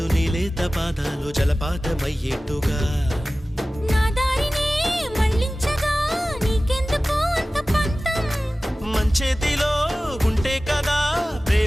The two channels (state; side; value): normal; both; correlation 0.97